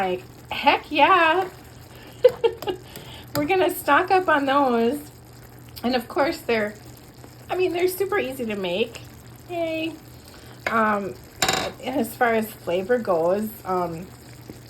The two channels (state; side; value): identical; both; correlation 1.00